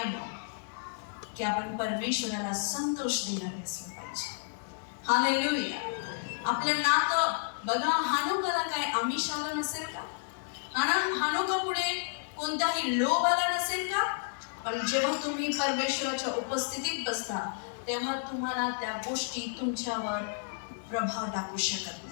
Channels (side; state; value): right; silent; digital silence